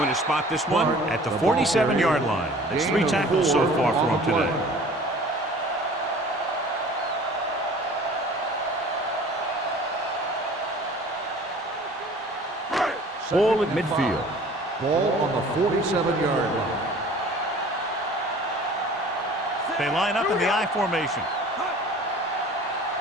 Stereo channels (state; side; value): normal; both; correlation 0.47